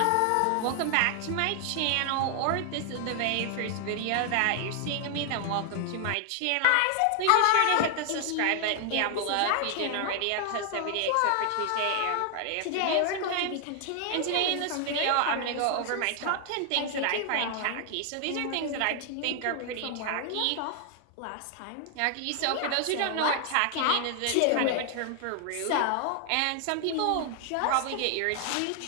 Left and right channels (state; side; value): different; both; correlation 0.00